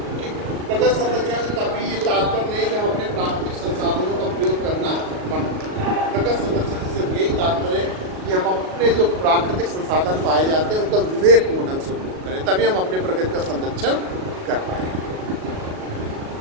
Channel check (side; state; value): left; late; 37 ms